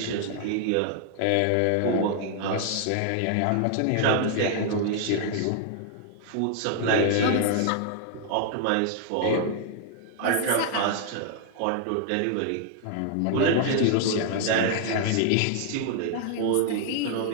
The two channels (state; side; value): different; both; correlation 0.00